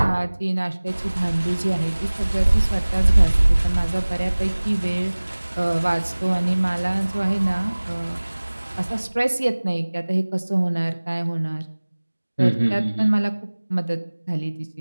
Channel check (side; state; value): both; inverted; correlation -1.00